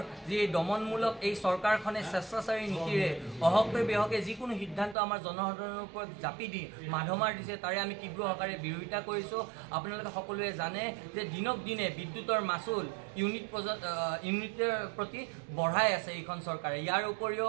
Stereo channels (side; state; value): left; drops out; at 5.0 s